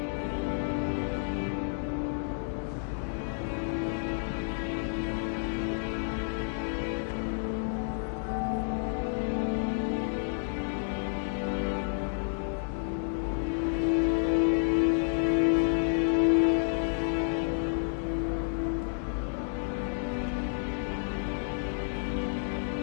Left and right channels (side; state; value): right; silent; digital silence